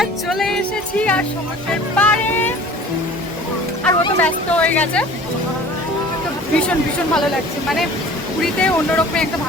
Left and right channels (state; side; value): normal; both; correlation 0.45